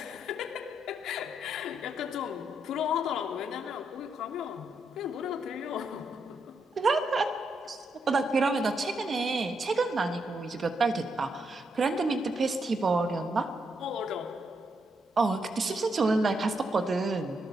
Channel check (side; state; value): both; normal; correlation 0.79